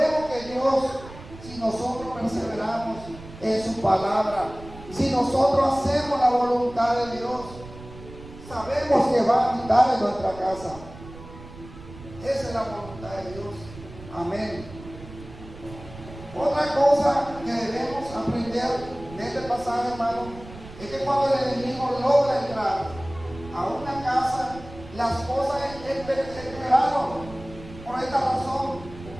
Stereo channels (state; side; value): noise; right; rumble, 16 dB below the sound